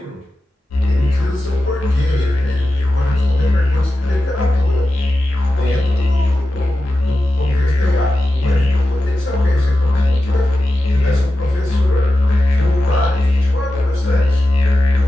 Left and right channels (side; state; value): both; normal; correlation 0.92